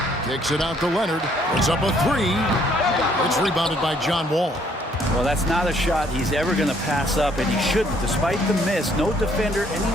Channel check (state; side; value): normal; both; correlation 0.65